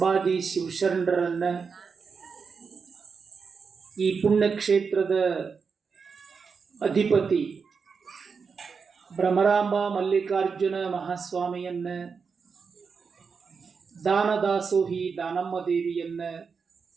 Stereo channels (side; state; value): left; quieter; 5.5 dB